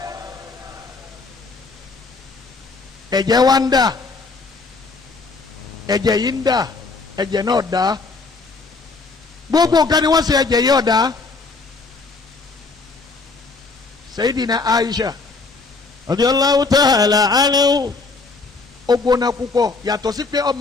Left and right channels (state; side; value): quieter; right; 3.9 dB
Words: ẹ̀jẹ̀ wá ń dà ẹ̀jẹ̀ yìí ń dà ẹ̀jẹ̀ náà dá gbogbo nǹkan ni wọ́n ṣe ẹ̀jẹ̀ yìí ọ̀dá Sayyidina Aisha radiyallahu ta'ala anhu. ó gbóná púpọ̀ yàtọ̀ sí pé